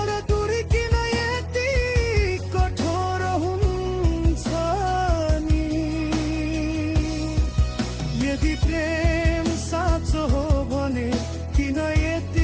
दूरी किन यति कठोर हुन्छ नि। यदि प्रेम साँचो हो भने किन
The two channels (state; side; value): identical; both; correlation 1.00